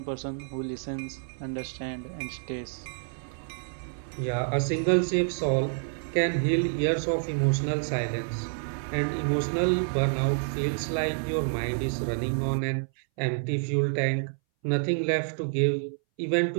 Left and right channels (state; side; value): silent; left; 59 dB below the other